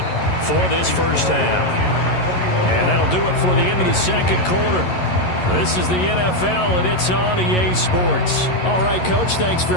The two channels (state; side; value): late; right; 11 ms